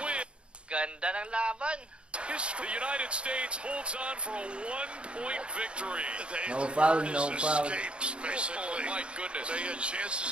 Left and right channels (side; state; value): left; late; 0.057 ms